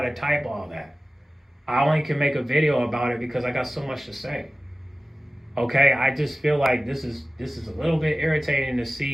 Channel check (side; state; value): both; normal; correlation 0.96